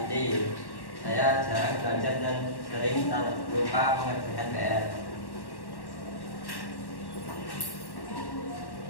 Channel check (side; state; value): right; late; 1.1 ms